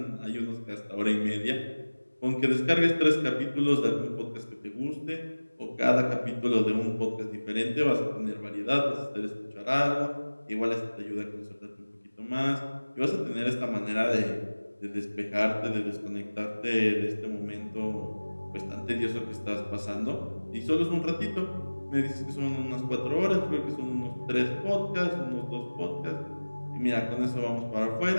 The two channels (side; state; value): both; inverted; correlation -1.00